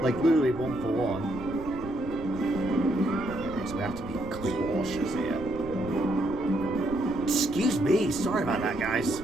Like, literally 1 for 1. Okay, so we have to be cautious here. Excuse me, sorry about that, guys.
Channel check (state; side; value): noise; right; rumble, 14 dB below the sound